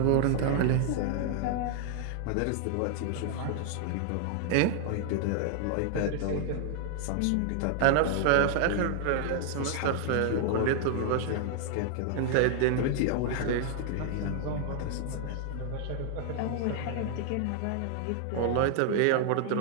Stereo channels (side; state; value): both; different; correlation 0.00